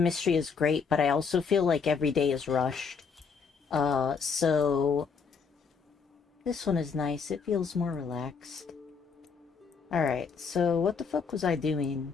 is great, but I also feel like every day is rushed. So this one is nice. It feels more relaxed. Alright, so what the fuck was I doing?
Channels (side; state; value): right; quieter; 5.6 dB